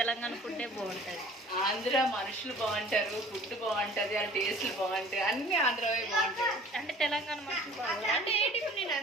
ఫుడ్డే బాగుంటుంది. ఆంధ్ర మనుషులు బాగుంటారు, ఫుడ్ బాగుంటది, వాళ్ళ టేస్ట్లు బాగుంటాయి, అన్ని ఆంధ్రవే బాగుంటాయి. అంటే తెలంగాణ మనుషులు బాగుంటుంది అంటే ఏంటి ఇప్పుడు నేను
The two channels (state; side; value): normal; both; correlation 0.48